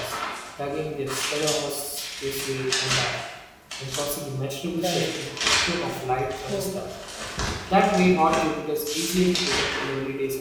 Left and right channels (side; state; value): both; identical; correlation 1.00